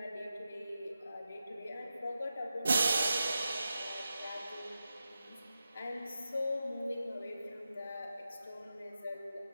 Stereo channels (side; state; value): both; inverted; correlation -0.90